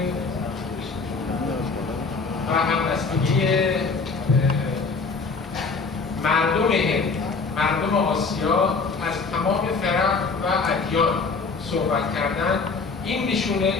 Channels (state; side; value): quieter; right; 4.4 dB